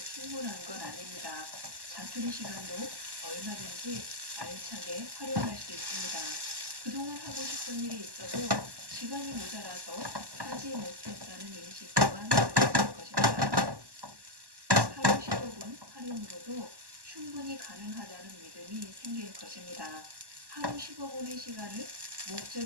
충분한 건 아닙니다. 자투리 시간도 얼마든지 알차게 활용할 수 있습니다. 그동안 하고 싶은 일이 있어도 시간이 모자라서 하지 못했다는 인식 또한 가져질 것입니다. 하루 15분 활용으로도 충분히 가능하다는 믿음이 생길 것입니다. 하루 15분의 시간을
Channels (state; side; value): late; left; 1.1 ms